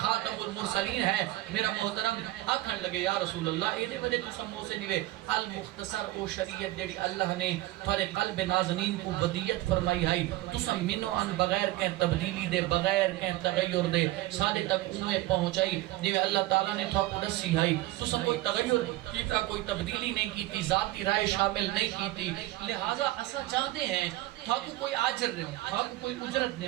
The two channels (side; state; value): left; quieter; 17.5 dB